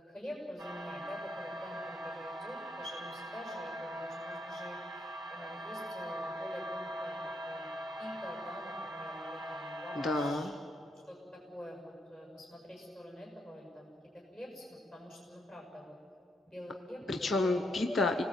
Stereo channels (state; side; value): normal; both; correlation 0.77